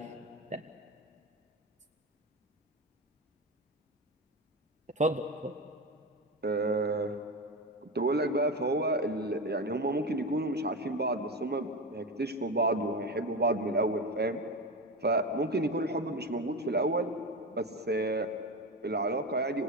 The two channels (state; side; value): normal; both; correlation 0.21